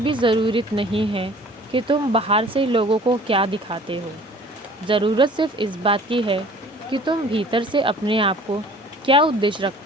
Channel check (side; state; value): both; normal; correlation 0.49